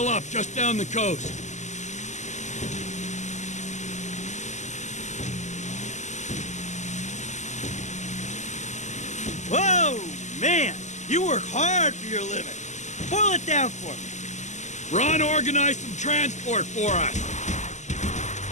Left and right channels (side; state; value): right; late; 0.34 ms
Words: up just down the coast. Whoa, man. You work hard for your living. Boil it down for me. Ron organized some transport for us.